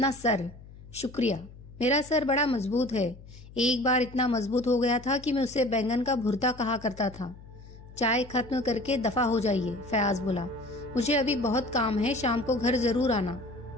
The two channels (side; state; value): left; noise; hum, 19 dB below the sound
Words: सर। शुक्रिया। मेरा सर बड़ा मजबूत है, एक बार इतना मजबूत हो गया था कि मैं उसे बैंगन का भुर्ता कहा करता था। चाय खत्म करके दफा हो जाइए, फयाज बोला। मुझे अभी बहुत काम है, शाम को घर जरूर आना।